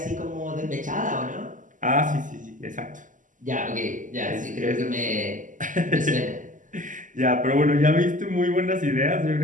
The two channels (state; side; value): late; left; 0.38 ms